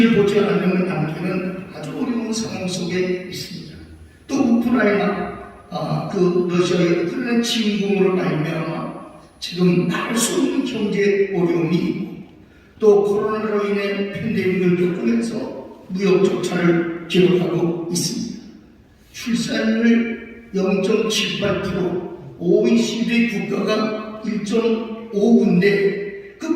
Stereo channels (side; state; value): both; identical; correlation 1.00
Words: 보지 않으면 남기는 아주 어려운 상황 속에 있습니다. 또 우크라이나 그 러시아의 우크라이나 침공으로 말미암아 지금 말할 수 없는 경제 어려움이 있고 또 코로나로 인해 팬데믹을 겪으면서 무역 적자를 기록하고 있습니다. 출산율 0.78%, OECD 국가가 1.5인데